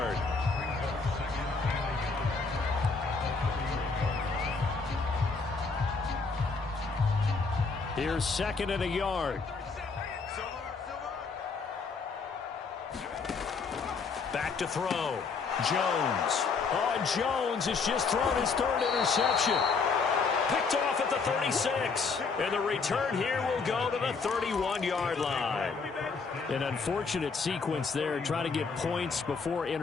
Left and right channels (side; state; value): right; quieter; 4.8 dB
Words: Here's second and a yard. Back to throw. Jones. Oh, Jones has just thrown his third interception. Picked off at the 36. And the return here will go to the 31-yard line. An unfortunate sequence there, trying to get points before